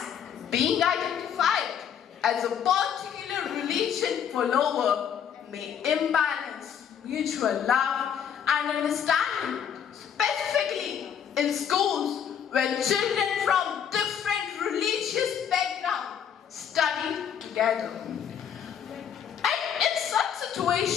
being identified as a particular religion follower may imbalance mutual love and understanding, specifically in schools where children from different religious backgrounds study together. And in such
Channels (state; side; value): quieter; right; 8.4 dB